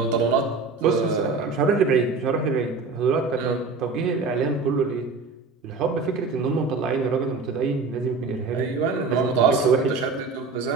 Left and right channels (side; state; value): left; quieter; 4.3 dB